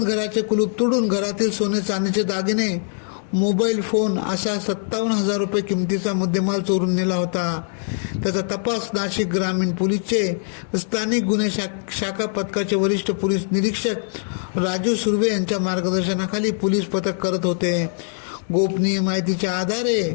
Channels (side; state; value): right; silent; digital silence